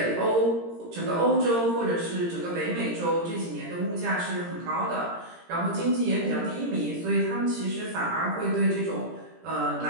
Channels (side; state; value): left; late; 17 ms